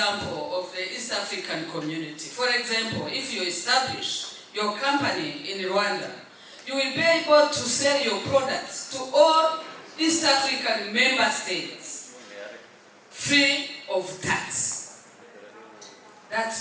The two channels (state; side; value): identical; both; correlation 1.00